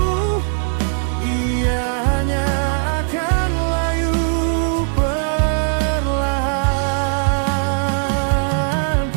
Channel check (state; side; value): silent; left; 63 dB below the other